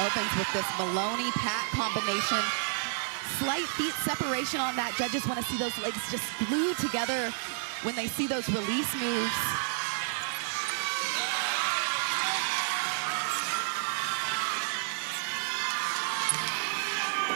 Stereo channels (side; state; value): left; silent; digital silence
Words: with this Maloney-Pat combination. Slight feet separation on that. Judges want to see those legs just glued together when they see those release moves.